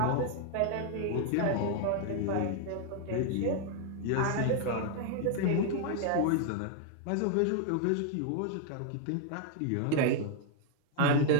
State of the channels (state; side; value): different; both; correlation 0.00